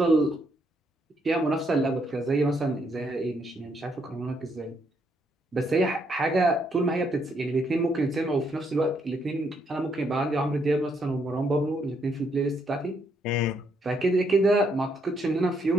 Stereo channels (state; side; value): normal; both; correlation 0.74